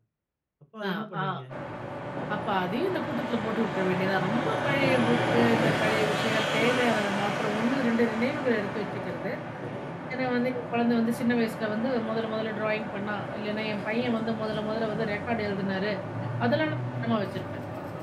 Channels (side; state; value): both; identical; correlation 1.00